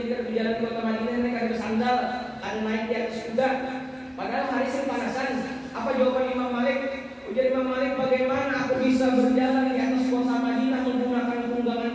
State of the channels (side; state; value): both; identical; correlation 1.00